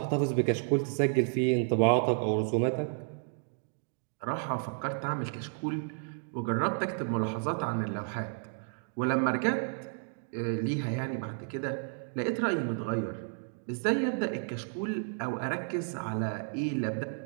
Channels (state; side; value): silent; left; 57 dB below the other